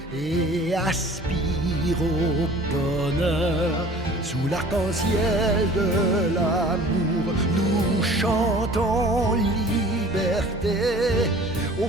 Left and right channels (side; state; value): both; normal; correlation 0.46